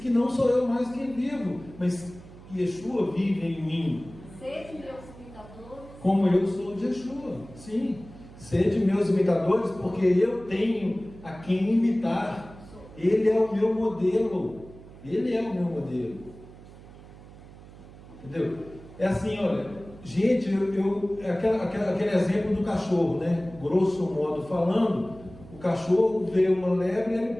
que não sou eu mais quem vivo, mas Yeshua vive em mim. Sede meus imitadores. Como eu sou de Yeshua. Sim. Sede meus imitadores, porque eu tenho a quem imitar. Ele é o meu modelo. Ele é o meu modelo. Entendeu? É assim, olha, gente, aquele exemplo do cachorro, né? Grosso modo falando, o cachorro vê uma lebre e ele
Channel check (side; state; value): right; noise; hum, 19 dB below the sound